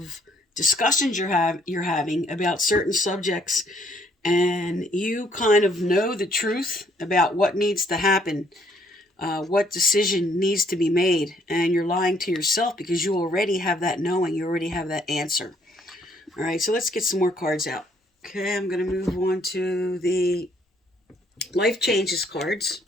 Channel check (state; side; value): normal; both; correlation 0.66